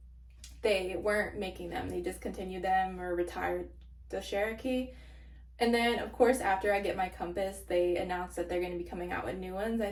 they weren't making them. They discontinued them or retired the Cherokee. And then, of course, after I get my Compass, they announced that they're going to be coming out with new ones,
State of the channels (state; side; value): identical; both; correlation 1.00